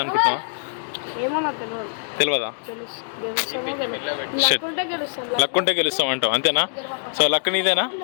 అనుకుంటున్నావా? తెలియదా? లక్ ఉంటే గెలుస్తాం అంటావు, అంతేనా? సో లక్ నీదేనా?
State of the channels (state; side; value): silent; right; digital silence